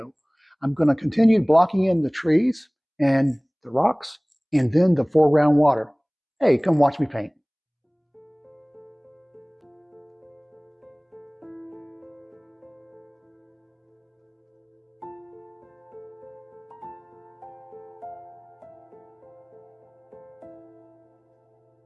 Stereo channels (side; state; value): both; identical; correlation 1.00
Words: I'm going to continue blocking in the trees and the rocks and then the foreground water. Hey, come watch me paint.